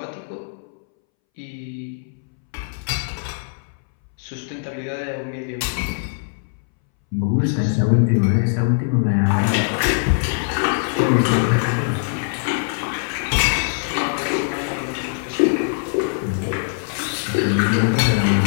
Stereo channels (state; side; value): silent; right; 63 dB below the other